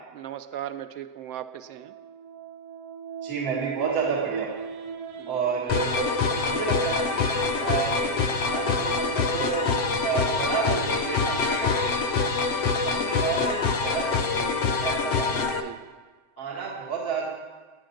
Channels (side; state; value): right; late; 7.7 ms